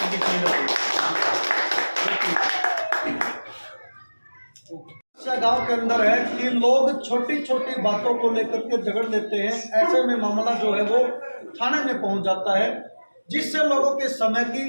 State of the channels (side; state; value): both; inverted; correlation -1.00